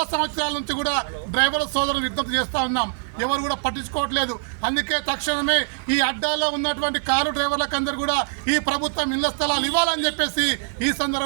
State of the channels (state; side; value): silent; left; digital silence